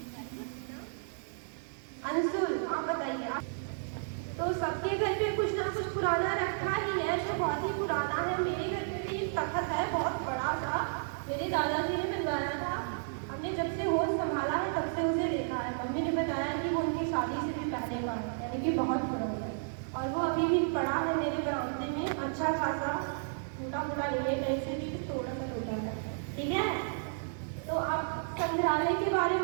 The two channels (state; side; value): silent; left; digital silence